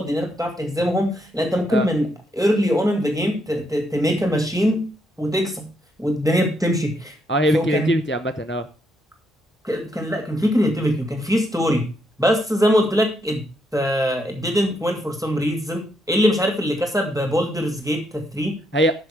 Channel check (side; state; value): both; normal; correlation 0.77